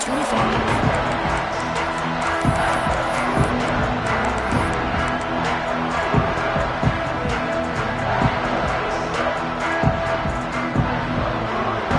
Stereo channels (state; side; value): identical; both; correlation 1.00